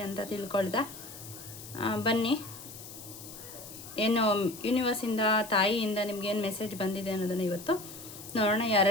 ಅಂತ ತಿಳ್ಕೊಳ್ತಾ, ಬನ್ನಿ ಏನು ಯೂನಿವರ್ಸಿಂದ ತಾಯಿಯಿಂದ ನಿಮ್ಗೇನು ಮೆಸೇಜ್ ಬಂದಿದೆ ಅನ್ನೋದನ್ನು ಇವತ್ತು ನೋಡೋಣ.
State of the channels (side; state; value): left; noise; hiss, 14 dB below the sound